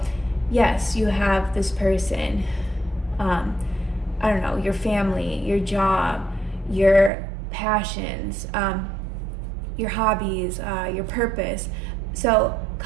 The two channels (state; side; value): drops out; left; at 7.1 s